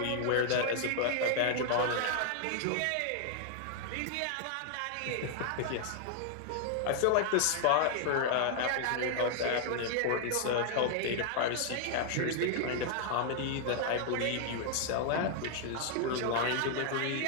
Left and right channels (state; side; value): different; both; correlation 0.00